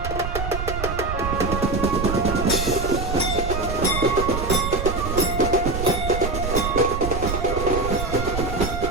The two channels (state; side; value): noise; right; rumble, 4 dB below the sound